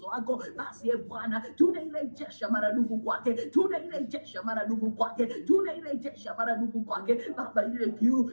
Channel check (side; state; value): both; inverted; correlation -1.00